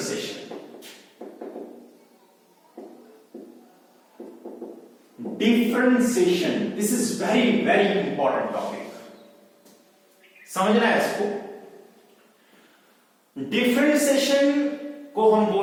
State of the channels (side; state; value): both; identical; correlation 1.00